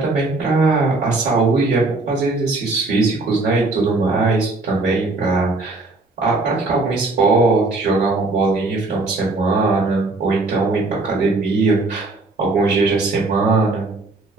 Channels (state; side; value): quieter; left; 3.2 dB